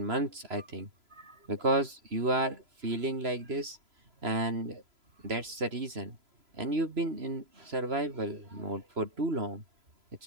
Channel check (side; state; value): left; late; 3.0 ms